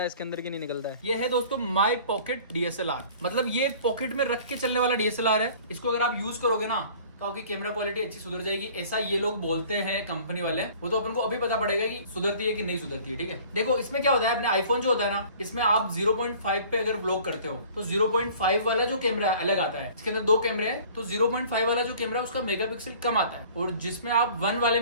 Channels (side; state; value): both; inverted; correlation -0.49